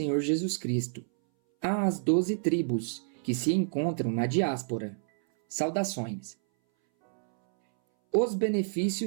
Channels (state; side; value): silent; left; 59 dB below the other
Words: Jesus Cristo, às 12 tribos que se encontram na diáspora. Saudações. Os